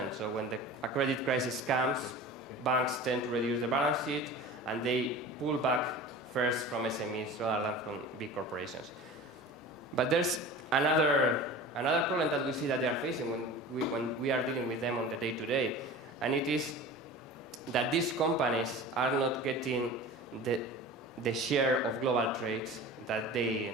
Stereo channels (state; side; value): normal; both; correlation 0.36